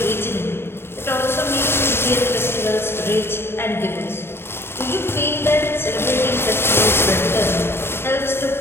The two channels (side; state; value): right; late; 0.11 ms